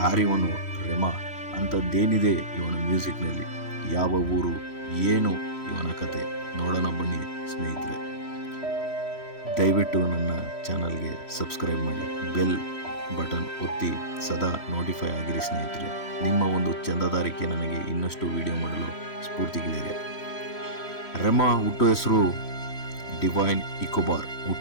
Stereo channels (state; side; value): late; right; 3.1 ms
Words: ರೆಮಾ? ಅಂಥದ್ದೇನಿದೆ ಇವನ ಮ್ಯೂಸಿಕ್ನಲ್ಲಿ? ಯಾವ ಊರು, ಏನು ಇವನ ಕತೆ? ನೋಡೋಣ ಬನ್ನಿ ಸ್ನೇಹಿತರೆ. ದಯವಿಟ್ಟು ನನ್ನ ಚಾನಲ್ಗೆ ಸಬ್ಸ್ಕ್ರೈಬ್ ಮಾಡಿ, ಬೆಲ್ ಬಟನ್ ಒತ್ತಿ ಸದಾ ನೋಟಿಫೈ ಆಗಿರಿ ಸ್ನೇಹಿತರೆ. ನಿಮ್ಮ ಒಂದು ಚಂದಾದಾರಿಕೆ ನನಗೆ ಇನ್ನಷ್ಟು ವಿಡಿಯೋ ಮಾಡಲು ಸ್ಫೂರ್ತಿಗಿದ್ದಾರೆ. ರೆಮಾ ಹುಟ್ಟು ಹೆಸರು ಡಿವೈನ್ ಇಕೋಬಾರ್.